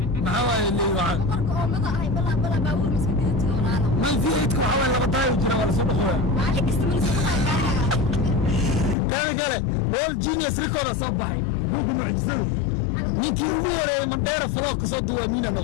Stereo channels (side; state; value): right; drops out; at 9.0 s